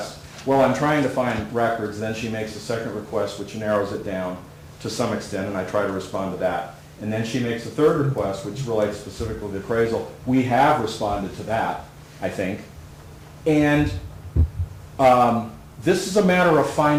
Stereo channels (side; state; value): both; identical; correlation 1.00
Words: Well, I'm trying to find records, then she makes a second request, which narrows it down to some extent, and I try to respond to that. And then she makes a third request, which relates specifically to the appraisal. We have responded to that, I think. And this is a matter of